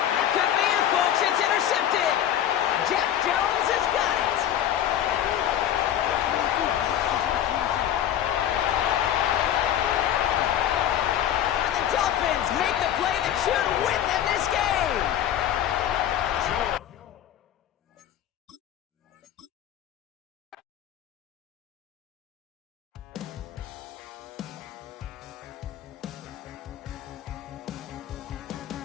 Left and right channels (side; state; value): right; quieter; 10.9 dB